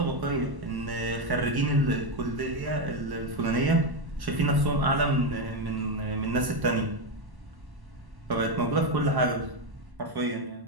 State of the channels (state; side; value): late; left; 1.1 ms